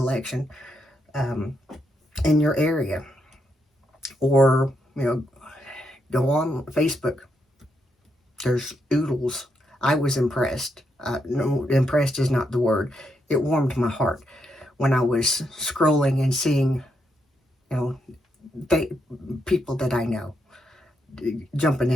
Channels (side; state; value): both; normal; correlation 0.80